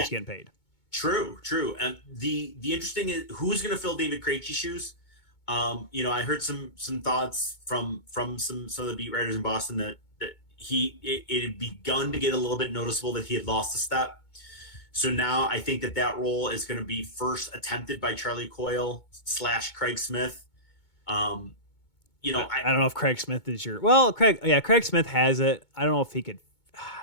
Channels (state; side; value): late; right; 2.2 ms